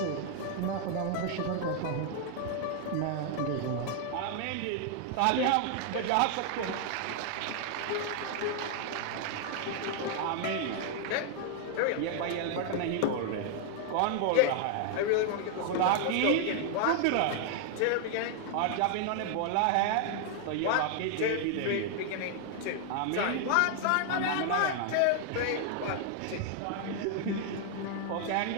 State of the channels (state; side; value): different; both; correlation 0.00